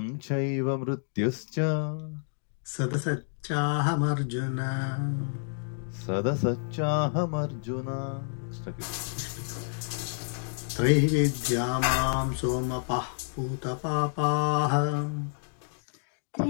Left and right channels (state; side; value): silent; right; digital silence